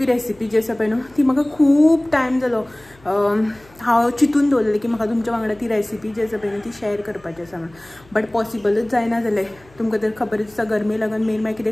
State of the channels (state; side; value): noise; left; hum, 27 dB below the sound